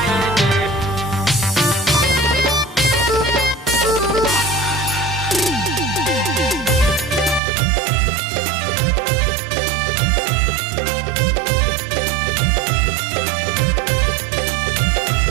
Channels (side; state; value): left; drops out; at 7.4 s